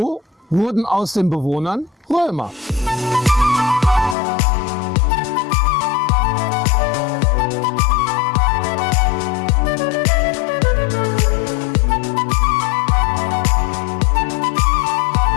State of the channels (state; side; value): drops out; right; at 4.2 s